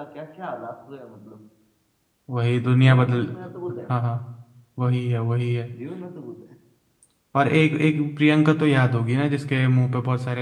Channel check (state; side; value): identical; both; correlation 1.00